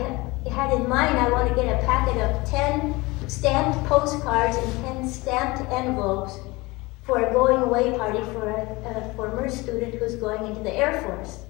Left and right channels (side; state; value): right; quieter; 22.9 dB